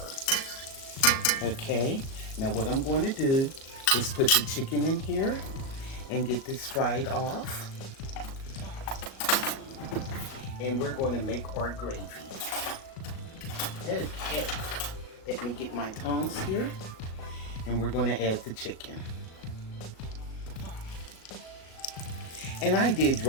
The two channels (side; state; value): right; late; 37 ms